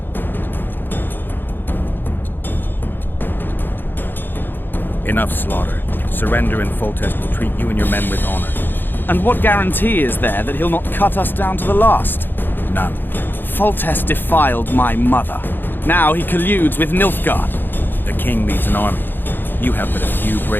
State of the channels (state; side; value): late; right; 0.096 ms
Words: Enough slaughter. Surrender and Foltest will treat you and your men with honor. And what guarantee is there that he'll not cut us down to the last? None. Foltest defiled my mother. Now he colludes with Nilfgaard. The king leads an army. You have but a few